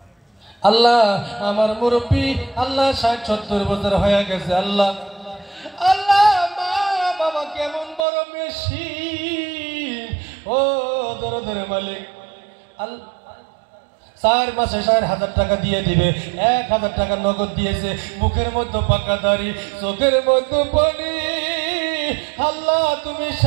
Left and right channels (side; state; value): left; drops out; at 8.1 s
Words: আল্লাহ আমার মুরব্বী আল্লাহ 60-70 বছর হয়ে গেছে, আল্লাহ আল্লাহ মা বাবা কেমন বড় মেশিন, ও দরদের মালিক। আল্লাহ 4 মাসে 4,000 টাকা দিয়ে দিবে, 1,000 টাকা নগদ দিয়েছে, মুখের মধ্যে পাকা দাড়ি, চোখের মধ্যে পানি। আল্লাহ তুমি